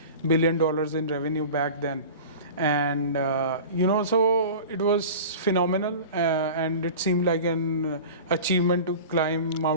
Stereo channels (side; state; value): both; inverted; correlation -0.36